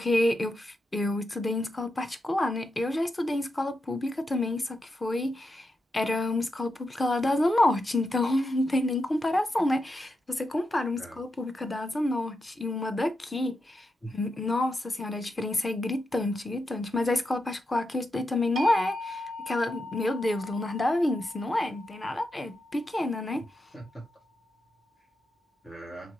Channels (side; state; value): both; normal; correlation 0.86